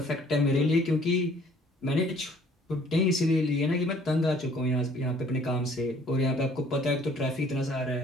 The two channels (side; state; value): both; normal; correlation 0.57